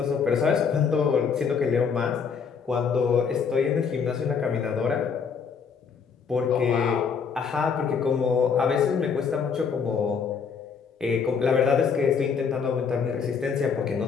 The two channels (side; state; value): right; quieter; 6.1 dB